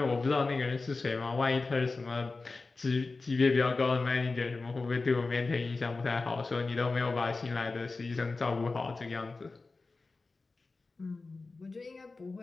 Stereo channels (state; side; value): quieter; right; 3.7 dB